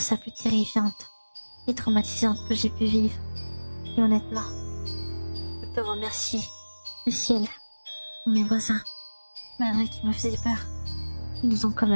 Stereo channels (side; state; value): both; inverted; correlation -1.00